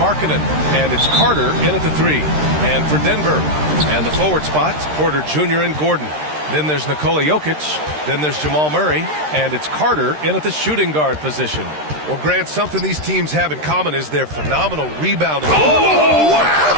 and it's Carter in at the 3. And for Denver, and the forward spots, Porter Jr. and Gordon. Then there's Nikola Jokic, then there's Jamal Murray, and it's Carter in at the shooting guard position. Well, Grant, something these teams have in common is their phenomenal rebounding. Oh,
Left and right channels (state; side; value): late; left; 13 ms